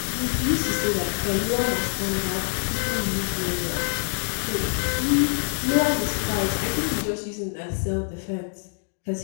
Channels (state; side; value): silent; right; digital silence